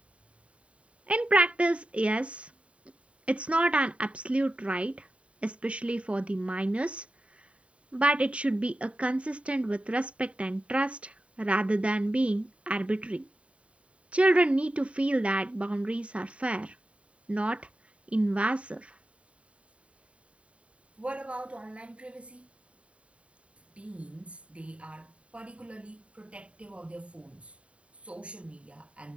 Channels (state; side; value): late; left; 0.063 ms